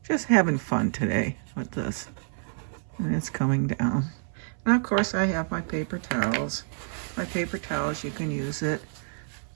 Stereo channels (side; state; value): left; silent; 57 dB below the other